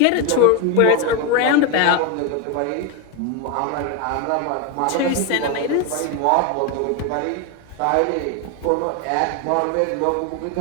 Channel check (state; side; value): different; both; correlation 0.02